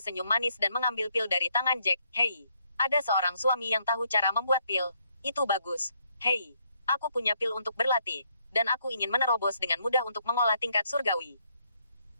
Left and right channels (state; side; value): inverted; both; correlation -0.73